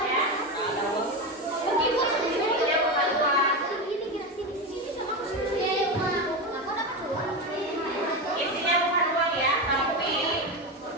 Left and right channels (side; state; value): both; normal; correlation 0.17